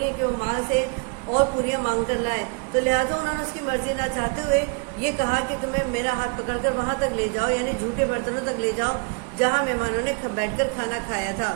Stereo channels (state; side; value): quieter; left; 35.5 dB